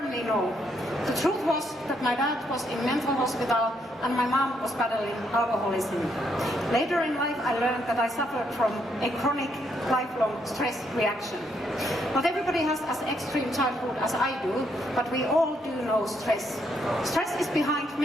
no. The truth was that my dad was in mental hospital and my mom was battling alcoholism. Later in life, I learned that I suffered from a chronic, lifelong stress reaction. Not everybody has as extreme childhood as I do, but we all do know stress. Stress is behind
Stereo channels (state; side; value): normal; both; correlation 0.74